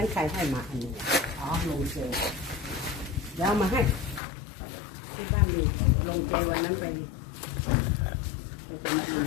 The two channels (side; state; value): right; drops out; at 4.2 s